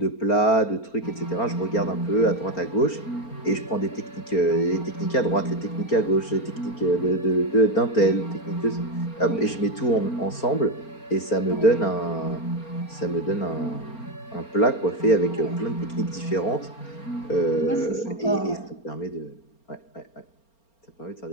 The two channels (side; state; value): right; late; 4.4 ms